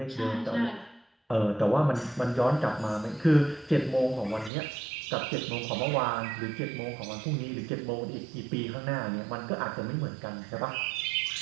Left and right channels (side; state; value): left; drops out; at 4.5 s